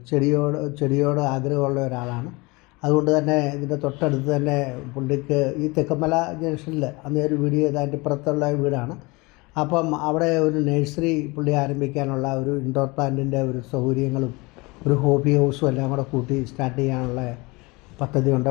ചെടിയോട് ആഗ്രഹമുള്ള ഒരാളാണ്. അതുകൊണ്ട് തന്നെ ഇതിൻ്റെ തൊട്ടടുത്ത് തന്നെ പുള്ളിക്ക് ഈ തെക്കുംമല ജംഗ്ഷനിൽ അന്ന് ഒരു വീഡിയോ ചെയ്തതിൻ്റെ ഇപ്പുറത്തുള്ള വീടാണ്. അപ്പം അവിടെ ഒരു നഴ്സറി പുള്ളി ആരംഭിക്കാനുള്ള ഒരു ഇൻഡോർ പ്ലാന്റിൻ്റെ ഒരു സൗകര്യങ്ങളും ഒരു ഹോബി ഹൗസും എല്ലാം കൂടെ കൂട്ടി സ്റ്റാർട്ട് ചെയ്യാനുള്ള പദ്ധതിയുണ്ട്.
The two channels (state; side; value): quieter; right; 25.1 dB